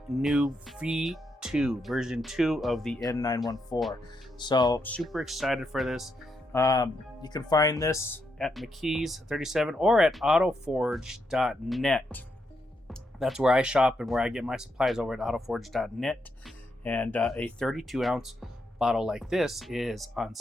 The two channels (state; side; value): normal; both; correlation 0.81